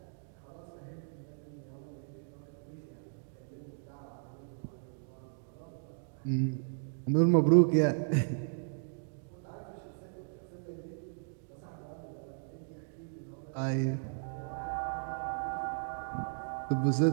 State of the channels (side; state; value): left; silent; digital silence